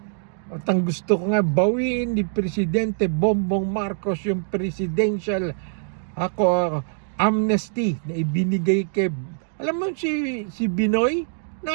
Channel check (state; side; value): silent; left; digital silence